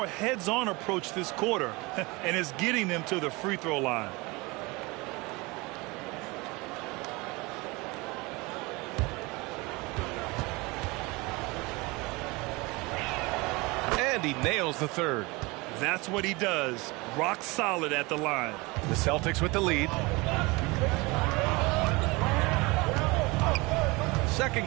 heads-on approach this quarter, and it's getting them to the free throw line. And he nails the third. That's what he does. Rock solid at the line. The Celtics with the lead. Second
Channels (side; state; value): left; quieter; 24.6 dB